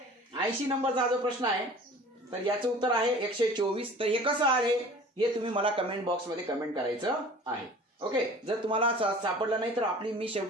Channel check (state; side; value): normal; both; correlation 0.44